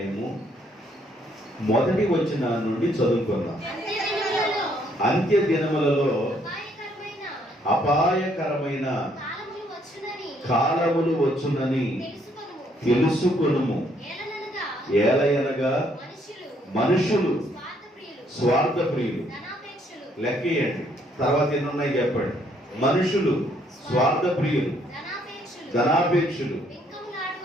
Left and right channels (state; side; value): normal; both; correlation 0.68